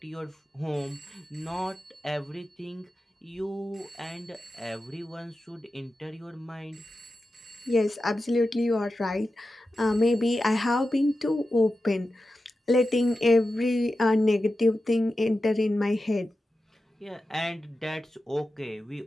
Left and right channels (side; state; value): both; normal; correlation 0.92